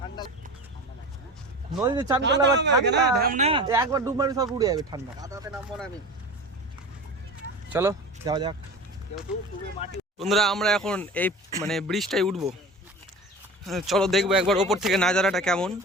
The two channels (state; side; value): normal; both; correlation 0.33